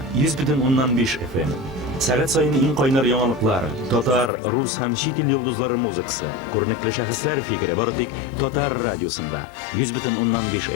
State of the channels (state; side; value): drops out; right; at 4.3 s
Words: 100.5 FM. Saat sayın eng qaynar yangiliklar, Tatar, rus ham chet el yulduzlari muzikasi, ko'rinakli shaxslar fikri boritik Tatar radiosida 100.5